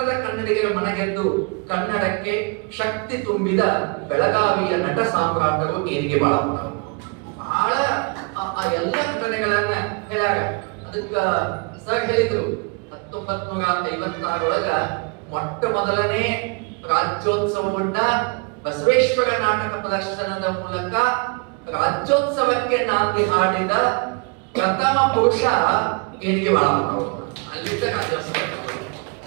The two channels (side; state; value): left; quieter; 32.3 dB